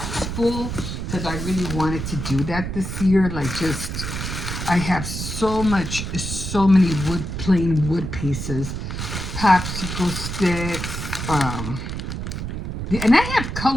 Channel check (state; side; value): noise; right; rumble, 5 dB below the sound